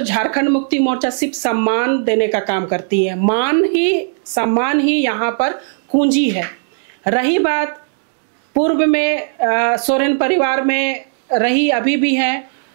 झारखंड मुक्ति मोर्चा सिर्फ सम्मान देने का काम करती है। सम्मान ही यहाँ पर कुंजी है। रही बात पूर्व में सोरेन परिवार में रही, अभी भी है,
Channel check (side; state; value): left; silent; digital silence